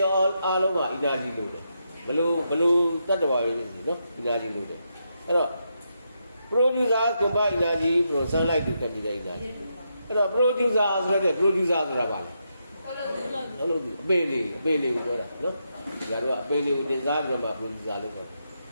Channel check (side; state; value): both; inverted; correlation -0.82